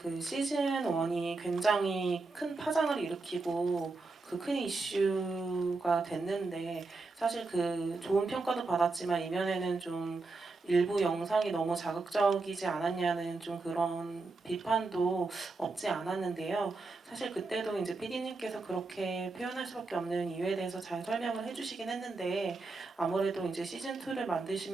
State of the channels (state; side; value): quieter; left; 3.6 dB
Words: 그 시즌 1이 굉장히 큰 파장을 일으키고 그 큰 이슈가 됐는데 사실 그 좋은 평가도 받았지만 이면에는 좀 일부 영상이 너무 자극적이지 않았냐는 좀 그런 비판도 없지 않았는데요. 사실 그때도 이제 PD님께서 그렇게 표현할 수밖에 없는 이유에 대해서 잘 설명을 해주시긴 했는데 아무래도 이제 시즌 2를